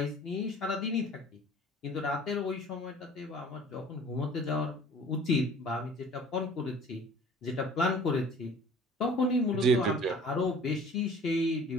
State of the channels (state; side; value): normal; both; correlation 0.47